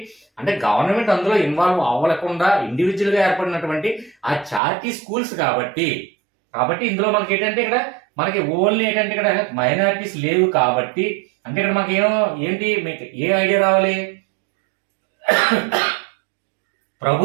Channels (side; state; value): left; drops out; at 4.6 s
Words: అంటే గవర్నమెంట్ అందులో ఇన్వాల్వ్ అవ్వకుండా ఇండివిజువల్ గా ఏర్పడినటువంటి ఆ చారిటీ స్కూల్స్. కాబట్టి ఇందులో మనకి ఏంటంటే ఇక్కడ మనకి ఓన్లీ ఏంటంటే ఇక్కడ మైనారిటీస్ లేవు. కాబట్టి అంటే ఇక్కడ మనకి ఏంటి మీకు ఏ ఐడియా రావాలి,